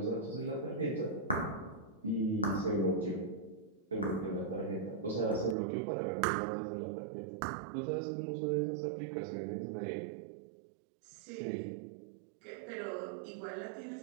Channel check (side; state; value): left; drops out; at 5.6 s